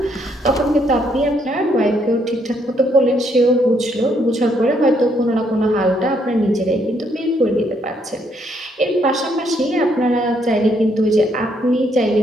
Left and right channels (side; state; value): both; normal; correlation 0.72